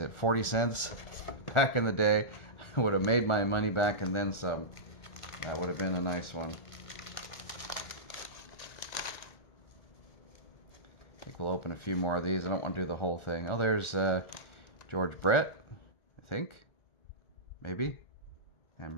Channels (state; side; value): late; right; 1.4 ms